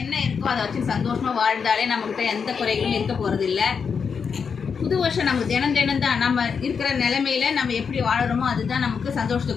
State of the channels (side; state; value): right; quieter; 6.1 dB